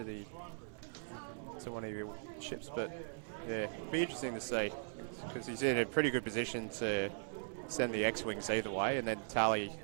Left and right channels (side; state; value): left; silent; 52 dB below the other